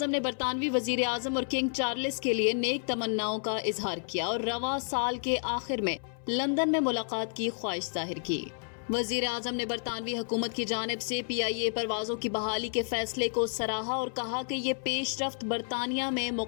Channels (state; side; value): silent; right; 57 dB below the other